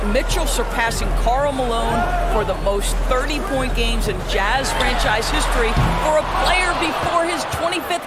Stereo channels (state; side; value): identical; both; correlation 1.00